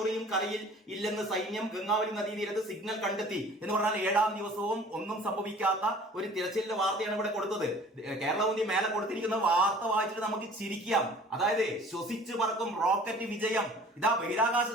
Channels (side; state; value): both; normal; correlation 0.48